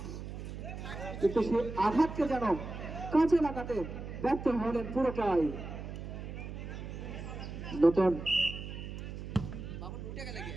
কিন্তু সে আঘাতকে যেন কাজে লাগাতে ব্যর্থ হলেন পুরোটাই। নতুন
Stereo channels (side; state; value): right; noise; hum, 8 dB below the sound